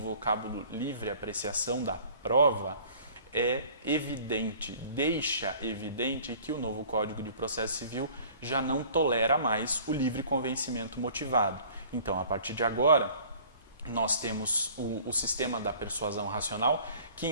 livre apreciação da prova é evidente, deixa evidente que o novo Código de Processo Civil já não tolera mais o livre convencimento motivado. Então, a partir de agora, nós temos o sistema da persuasão racional, que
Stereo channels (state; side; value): inverted; both; correlation -0.50